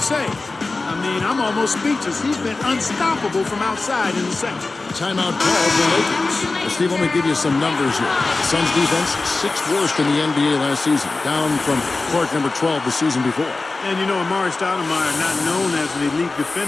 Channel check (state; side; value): quieter; right; 3.5 dB